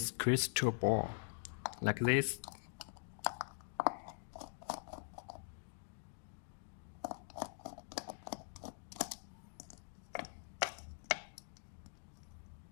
crystal ball like this.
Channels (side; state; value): right; silent; digital silence